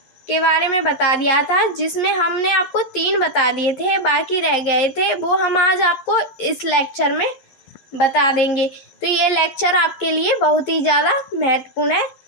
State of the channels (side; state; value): right; late; 11 ms